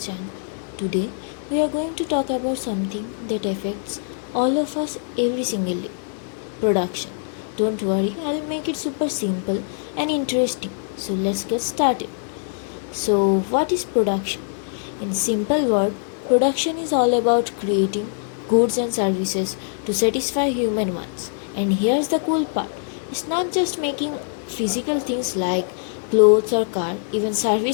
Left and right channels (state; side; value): silent; right; digital silence